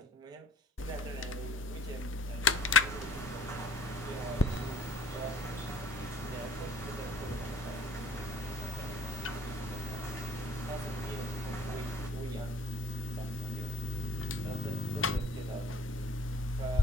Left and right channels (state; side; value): normal; both; correlation 0.53